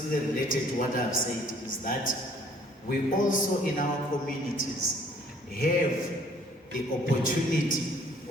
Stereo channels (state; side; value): normal; both; correlation 0.59